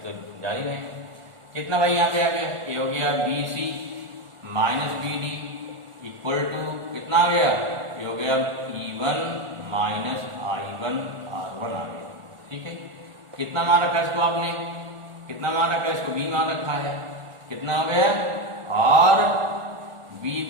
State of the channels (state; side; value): late; left; 1.4 ms